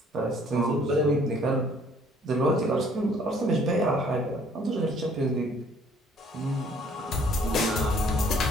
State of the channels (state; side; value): normal; both; correlation 0.59